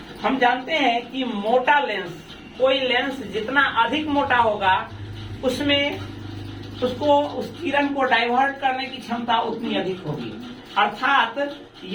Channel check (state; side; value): identical; both; correlation 1.00